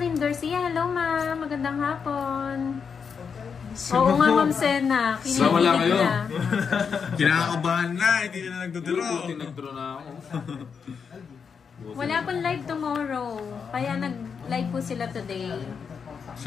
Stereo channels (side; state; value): right; quieter; 6.2 dB